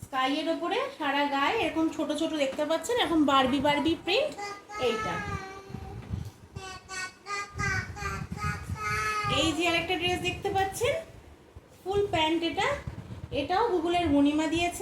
স্কাইয়ের ওপরে সারা গায়ে এরকম ছোট ছোট দেখতে পাচ্ছেন, এখন বারবি বারবি প্রিন্ট। এইটা এই যে আরেকটা ড্রেস দেখতে পাচ্ছেন, ফুল প্যান্ট। এটাও গুগলের মণিমা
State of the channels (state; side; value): identical; both; correlation 1.00